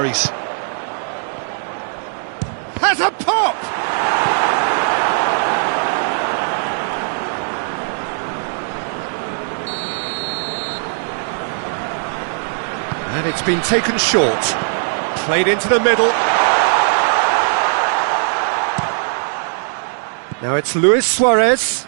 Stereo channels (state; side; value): silent; left; 67 dB below the other